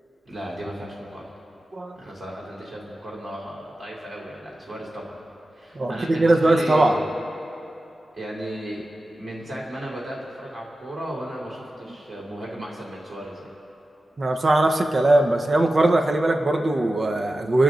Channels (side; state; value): both; normal; correlation 0.93